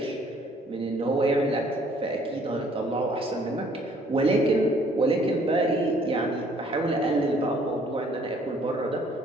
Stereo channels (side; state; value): both; normal; correlation 0.61